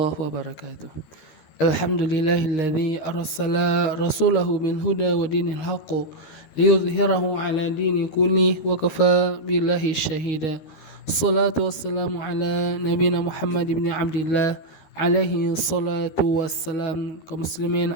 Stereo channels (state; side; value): late; right; 13 ms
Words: wabarakatuh. Alhamdulillahilladzi arsala rasulahu bil huda wa dinil haqq liyudhhirahu ala dini kulli wa kafa billahi syahida. Salatu wassalamu ala nabiyina Muhammad ibn Abdillah alaihi salatu wassalam. Kaum